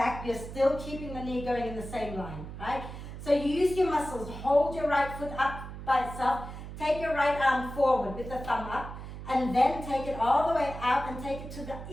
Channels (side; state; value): right; noise; hum, 10 dB below the sound